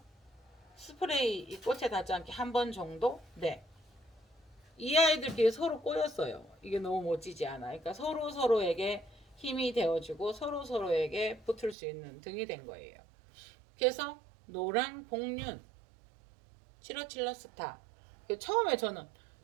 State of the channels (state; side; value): drops out; left; at 11.8 s